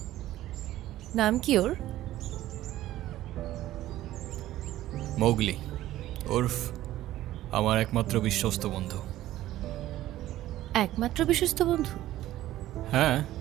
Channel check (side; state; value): left; quieter; 14.5 dB